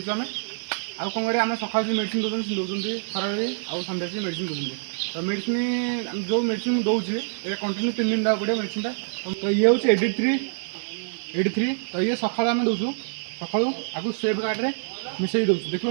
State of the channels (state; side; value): silent; left; 60 dB below the other